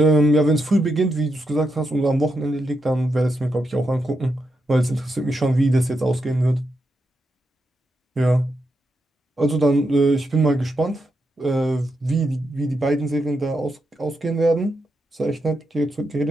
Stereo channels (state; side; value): normal; both; correlation 0.84